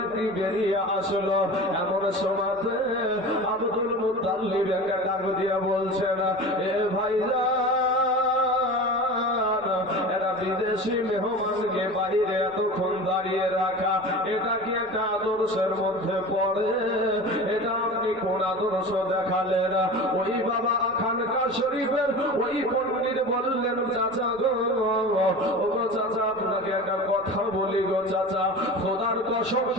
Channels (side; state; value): right; noise; rumble, 26 dB below the sound